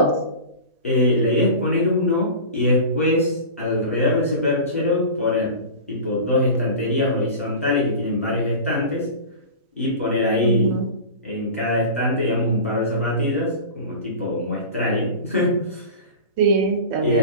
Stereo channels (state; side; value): inverted; both; correlation -0.33